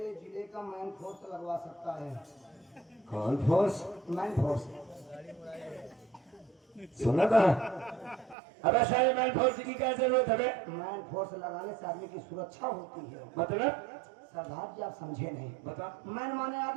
जिले का मैन फोर्स लगवा सकता है। कौन फोर्स? Man force. सुना था? अबे सारे मैन फोर्स की क्या जरूरत है बे? मैन फोर्स लगाने से आदमी की सुरक्षा होती है। मतलब सरदार जी आप समझे नहीं। बता। मैन माने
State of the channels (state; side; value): drops out; left; at 8.3 s